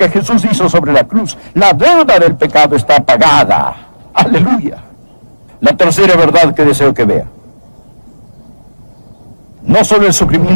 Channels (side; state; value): both; inverted; correlation -1.00